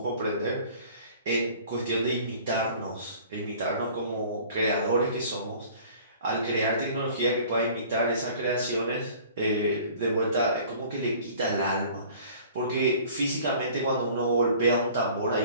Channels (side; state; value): both; inverted; correlation -0.49